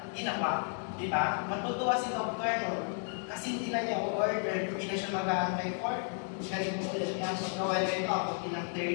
ginawa. Diba? Matutuwa si doktor no? Kasi hindi na niya order, hindi na siya mag-aantay for ganito ulit. Kaya magawa niya ito ako ng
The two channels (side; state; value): right; silent; 56 dB below the other